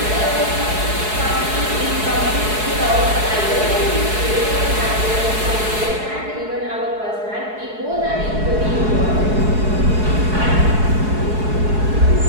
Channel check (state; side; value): late; left; 4.7 ms